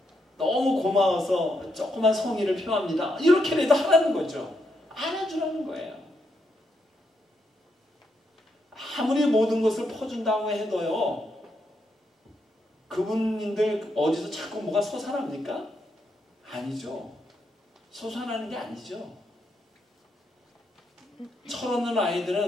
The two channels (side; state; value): both; normal; correlation 0.80